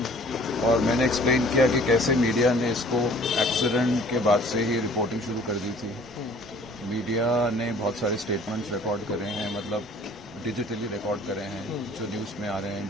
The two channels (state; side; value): normal; both; correlation 0.52